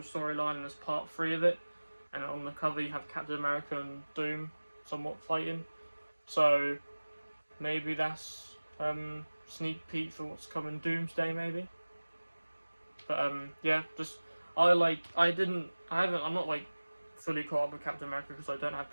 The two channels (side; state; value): both; inverted; correlation -1.00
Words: storyline, and is part 3 of it. And on the cover you have Captain America and Doom somewhat fighting. So maybe that's sneak peek for what's coming Doomsday maybe. But yeah, just I'm not fully caught up with Captain America because I don't have